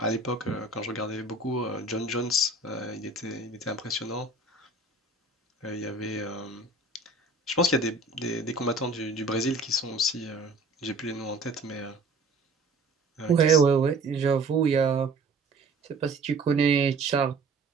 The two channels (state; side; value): quieter; left; 3.3 dB